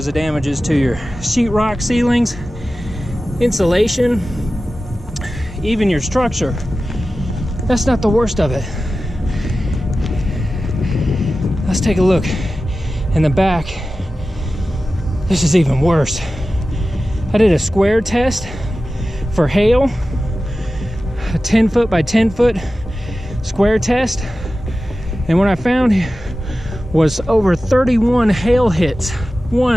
of damages to your sheetrock ceilings, insulation, even your structure. That's not the worst of it. Let's take a look in the back. This is even worse. I did a square test for hail, a 10 foot by 10 foot square test, and what I found was over 31 hail hits.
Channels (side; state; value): both; normal; correlation 0.94